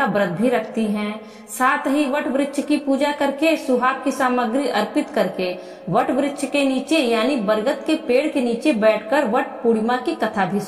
व्रत भी रखती हैं। साथ ही वट वृक्ष की पूजा करके, सुहाग की सामग्री अर्पित करके वट वृक्ष के नीचे यानी बरगद के पेड़ के नीचे बैठकर वट पूर्णिमा की कथा भी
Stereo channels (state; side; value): identical; both; correlation 1.00